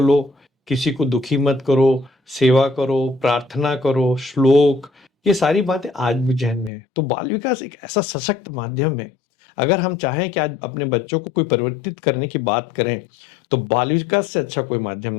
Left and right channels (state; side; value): drops out; right; at 6.7 s